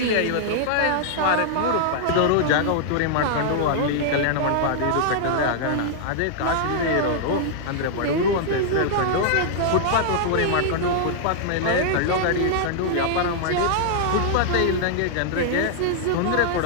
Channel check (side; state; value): both; different; correlation -0.01